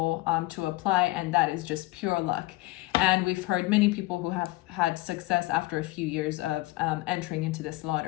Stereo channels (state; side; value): quieter; right; 20.0 dB